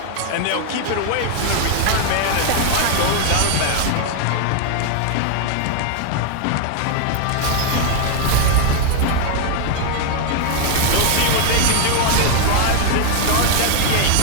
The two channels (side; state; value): both; different; correlation 0.00